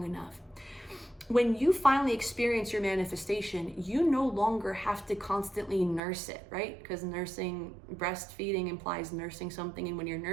enough. When you finally experience your manifestation, you no longer have to constantly nurse it, right? Because breastfeeding implies nursing something. And when you're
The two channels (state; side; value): drops out; left; at 6.0 s